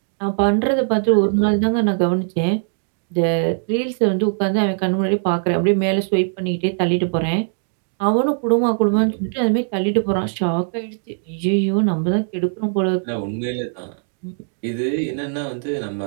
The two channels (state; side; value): silent; left; 65 dB below the other